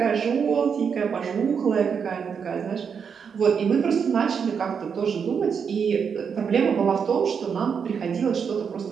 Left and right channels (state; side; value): quieter; left; 6.6 dB